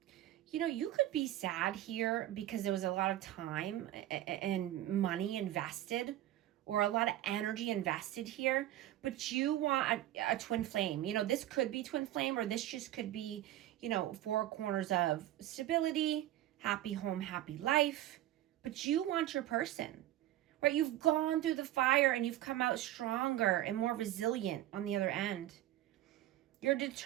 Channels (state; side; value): quieter; left; 13.8 dB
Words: you know, you could be sad here because there was a lot of time and money invested, or a lot of energy invested here, but you want a twin flame. You know, this could be twin flame, or this just could be, you know, four corners of stability, happy home, happy life, but you want your person, right? You've gone through the fire and you've come out stronger and more resilient on the other end. You're